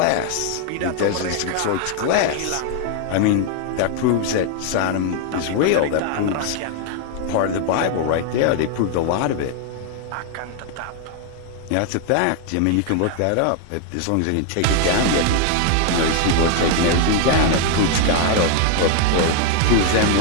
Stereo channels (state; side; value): different; both; correlation 0.00